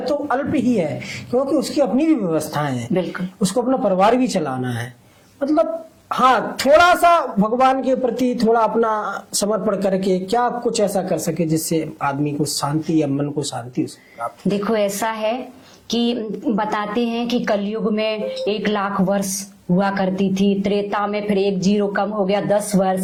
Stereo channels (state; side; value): identical; both; correlation 1.00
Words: तो अल्प ही है, क्योंकि उसकी अपनी भी व्यवस्थाएं हैं, बिल्कुल उसको अपना परिवार भी चलाना है। मतलब हाँ, थोड़ा सा भगवान के प्रति थोड़ा अपना समर्पण करके क्या कुछ ऐसा कर सके जिससे आदमी को शांति या मन को शांति प्राप्त। देखो ऐसा है कि बताते हैं कि कलयुग में 1,00,000 वर्ष हुआ करती थी, त्रेता में फिर 1 0 कम हो गया 10